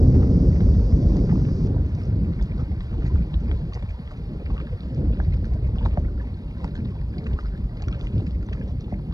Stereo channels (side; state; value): left; late; 0.18 ms